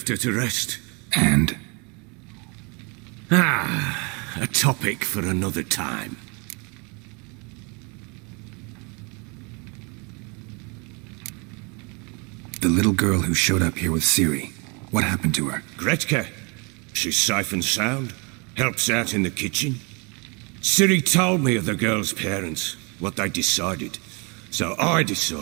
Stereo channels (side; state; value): left; quieter; 31.6 dB